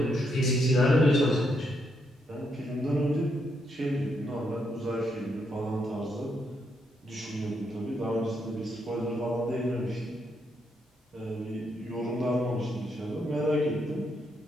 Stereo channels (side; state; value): both; normal; correlation 0.78